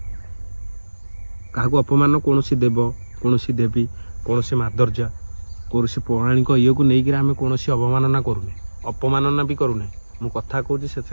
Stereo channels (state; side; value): inverted; both; correlation -1.00